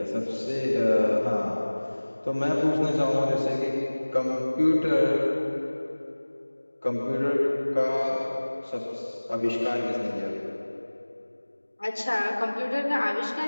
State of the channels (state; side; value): inverted; both; correlation -1.00